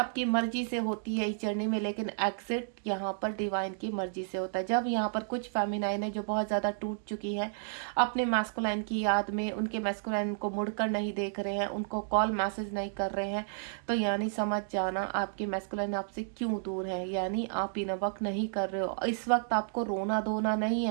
मर्जी से होती है इस जर्नी में, लेकिन एग्जिट यहाँ पर डिवाइन की मर्जी से होता है। जब यहाँ पर कुछ फेमिनाइन है जो बहुत ज़्यादा टूट चुकी है अपने मैस्कुलाइन की याद में, उनके मैस्कुलाइन को मुड़कर नहीं देख रहे हैं, उनको कॉल मैसेज नहीं कर रहे हैं, तो यानी समझ जाना आपके मैस्कुलाइन आपसे क्यों दूर है। यानी आप इन वक्त नहीं कर रहे हो, इस वक्त आपको रोना धोना नहीं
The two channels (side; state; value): left; silent; digital silence